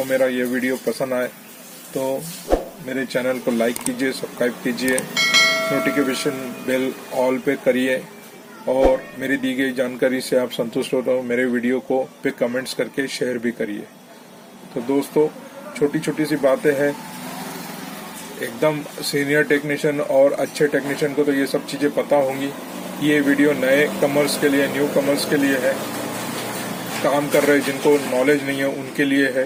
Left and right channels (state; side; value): identical; both; correlation 1.00